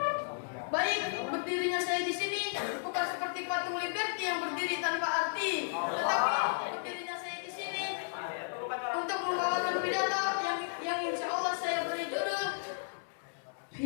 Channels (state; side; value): silent; right; digital silence